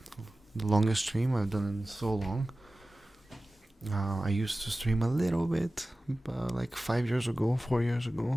longest stream I've done in so long. I used to stream a little bit, like 4 years ago,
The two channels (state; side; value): normal; both; correlation 0.96